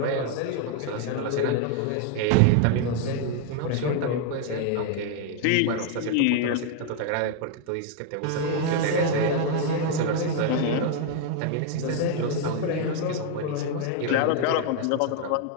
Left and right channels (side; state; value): both; different; correlation 0.00